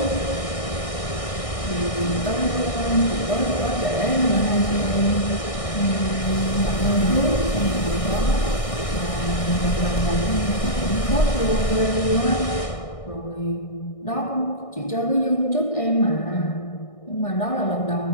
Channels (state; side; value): late; right; 1.6 ms